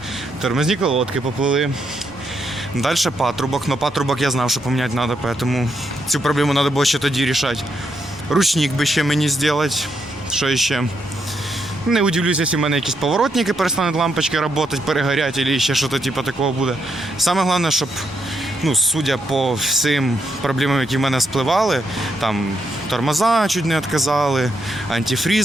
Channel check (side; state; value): both; normal; correlation 0.79